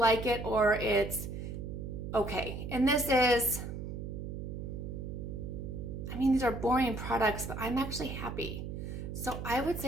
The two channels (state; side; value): noise; right; hum, 6 dB below the sound